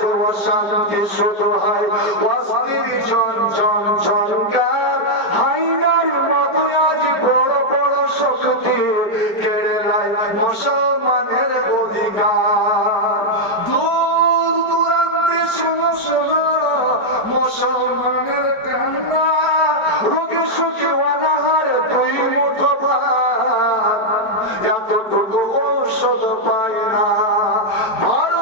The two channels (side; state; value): right; late; 4.8 ms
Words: অশান্তি শুরু হয়, অস্থির ঝনঝন ঝনকার, হাইনার মতো আজ বড় বড় শক্তি কেড়ে নেয় মুসলমানের অধিকার। দূর দূরান্তে শোনো শোনো মুসলমানের কান্না, রোগে সুখে অনাহারে দুই মুঠো ভাত, এতটুকু ঔষধ পায় না।